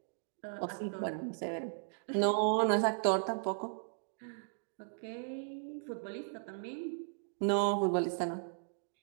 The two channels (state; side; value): silent; left; digital silence